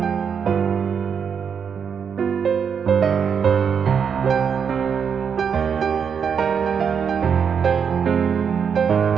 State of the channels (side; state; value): left; quieter; 7.0 dB